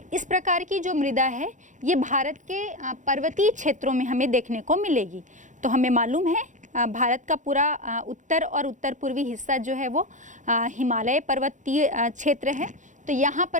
इस प्रकार की जो मृदा है ये भारत के पर्वतीय क्षेत्रों में हमें देखने को मिलेगी। तो हमें मालूम है भारत का पूरा उत्तर और उत्तर पूर्वी हिस्सा जो है वो हिमालय पर्वतीय क्षेत्र है। तो यहाँ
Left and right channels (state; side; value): late; left; 0.36 ms